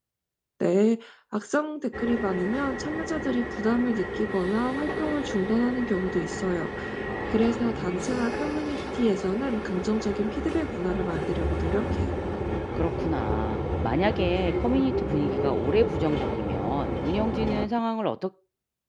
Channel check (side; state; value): both; identical; correlation 1.00